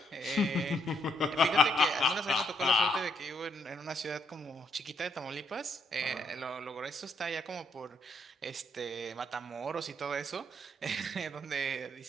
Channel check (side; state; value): both; normal; correlation 0.73